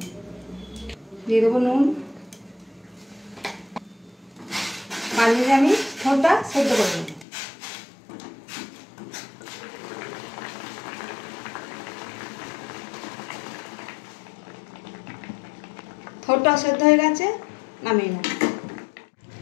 দিয়ে দেবো নুন। বানিয়ে আমি থোড়টা সেদ্ধ করে নেব। থোড়টা সেদ্ধ হয়ে গেছে, নামিয়ে নেব।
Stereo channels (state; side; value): drops out; right; at 7.2 s